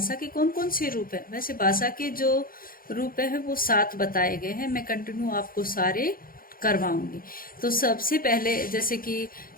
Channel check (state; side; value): late; right; 0.42 ms